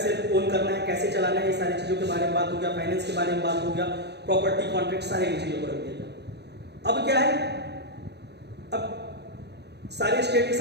ओन करना है, कैसे चलाना है, ये सारी चीजों के बारे में बात हो गया, फाइनेंस के बारे में बात हो गया, प्रॉपर्टी, कॉन्ट्रैक्ट, सारे चीजों को रख दिया गया। अब क्या है, अब सारे स्टेट के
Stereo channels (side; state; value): left; late; 0.49 ms